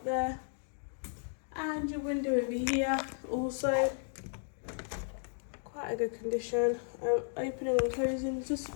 there. And your window over here, also quite a good condition. Opening and closing is just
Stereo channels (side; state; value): right; silent; digital silence